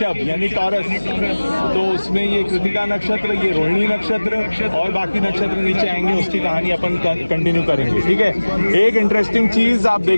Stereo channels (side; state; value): both; inverted; correlation -1.00